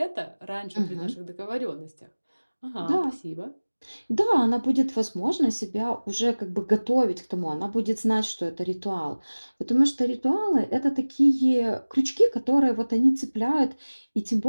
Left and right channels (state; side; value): inverted; both; correlation -1.00